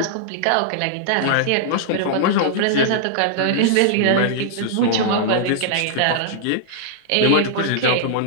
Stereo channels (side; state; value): both; different; correlation -0.01